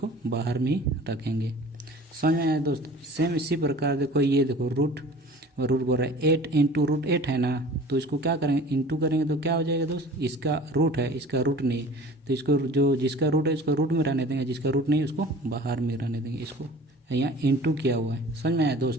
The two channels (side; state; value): both; normal; correlation 0.44